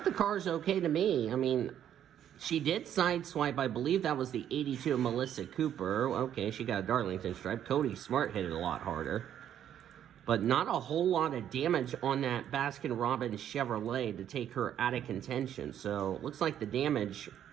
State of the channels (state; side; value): quieter; left; 10.2 dB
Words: the car's okay to me. I mean, she did sideswipe. I believe that was the 82 of Melissa Cooper. Okay, she got a Darlington stripe. Cody Smart hit it a lot harder. But not a whole lot of damage on that Baskin-Robbins Chevrolet to take her out of contention. So, looks like the damage